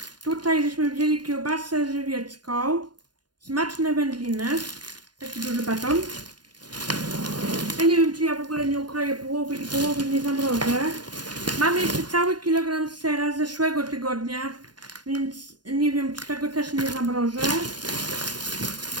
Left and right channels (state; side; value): late; left; 0.70 ms